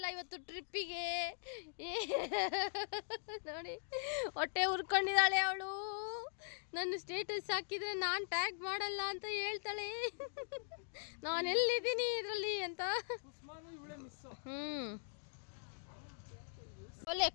ಇವತ್ತು ಟ್ರಿಪ್ಪಿಗೆ. ನೋಡಿ ಹೊಟ್ಟೆ ಉರ್ಕೊಂಡಿದ್ದಾಳೆ ಅವಳು. ನನ್ನ ಸ್ಟೇಟಸ್ ಹಾಕಿದ್ರೆ ನಾನು ಟ್ಯಾಗ್ ಮಾಡಲ್ಲ ಅಂತ ಹೇಳ್ತಾಳೆ. ನಾನು ಎಲ್ಲಿದ್ದೀನಿ ಇದರಲ್ಲಿ ಅಂತ.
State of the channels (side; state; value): right; silent; digital silence